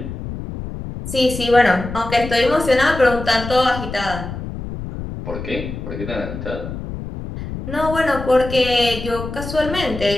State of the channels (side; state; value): left; noise; rumble, 8 dB below the sound